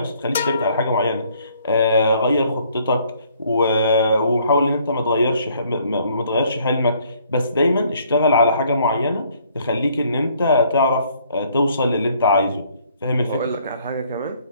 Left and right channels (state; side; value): inverted; both; correlation -0.63